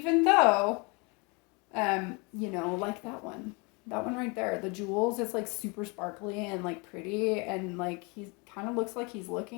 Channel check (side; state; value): right; quieter; 30.0 dB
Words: though like that one right there, the jewels, is like super sparkly and like pretty, and like he's kind of looks like he's